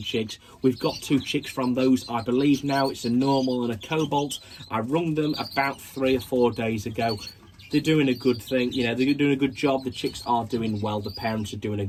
We've got 2 chicks from those, I believe now. It's a normal and a cobalt. I rung them about 3 or 4 days ago. They're doing a good thing, they're doing a good job. The chicks are doing well, the parents are doing a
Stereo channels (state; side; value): identical; both; correlation 1.00